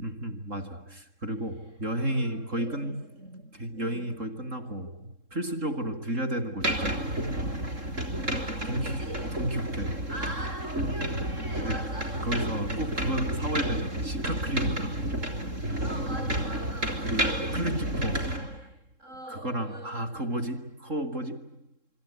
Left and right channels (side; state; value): left; late; 3.7 ms